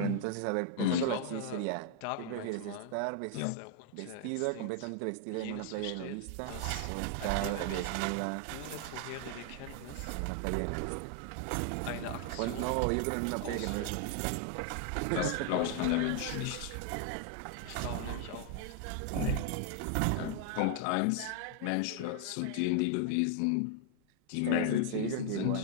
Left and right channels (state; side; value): different; both; correlation 0.00